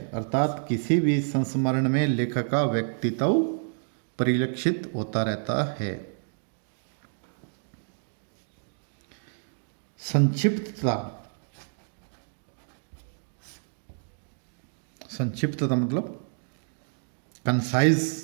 अर्थात किसी भी संस्मरण में लेखक का व्यक्तित्व परिलक्षित होता रहता है। संक्षिप्तता, संक्षिप्तता मतलब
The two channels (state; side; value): silent; left; digital silence